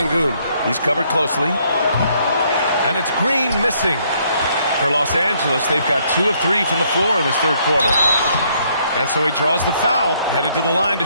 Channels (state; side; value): inverted; both; correlation -0.69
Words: He's covered closely. And it's Green missing. For Los Angeles, they've got 2 of 3 from the floor in this third quarter. And so he draws the foul, headed to the line to